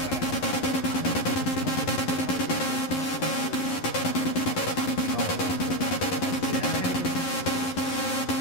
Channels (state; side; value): late; right; 11 ms